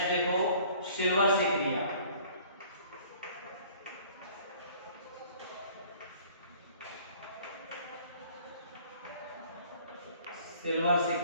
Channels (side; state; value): both; inverted; correlation -0.53